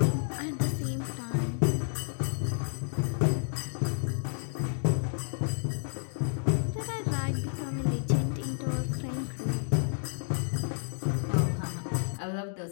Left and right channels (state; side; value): silent; right; digital silence